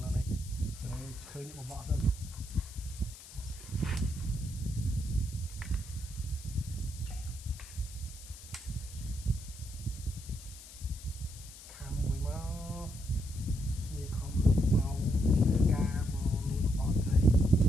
này khơi những vợ dân khám mùi máu như không màu ca màu luôn vợ này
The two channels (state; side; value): noise; left; hiss, 16 dB below the sound